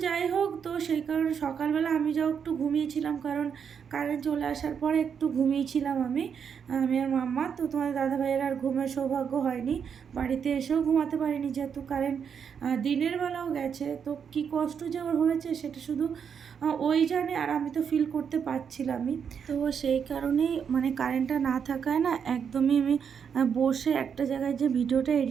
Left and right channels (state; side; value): quieter; left; 7.2 dB